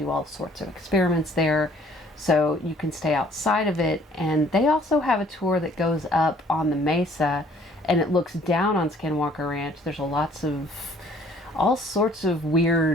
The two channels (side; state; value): both; normal; correlation 0.58